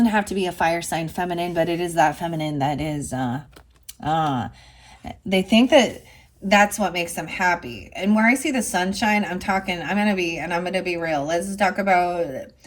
have to be a fire sign feminine, but it is that feminine that is, they think that that's what makes them happy. And where I see the sunshine, I'm gonna be real. Let's talk about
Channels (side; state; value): both; identical; correlation 1.00